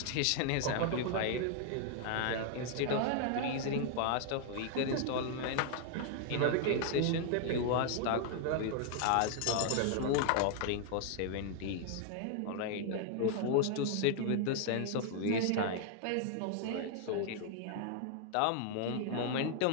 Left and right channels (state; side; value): different; both; correlation 0.00